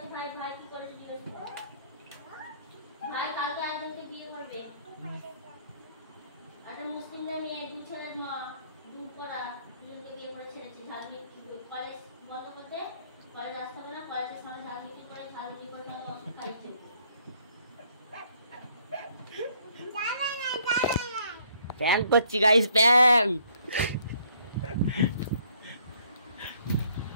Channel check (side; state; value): both; inverted; correlation -0.65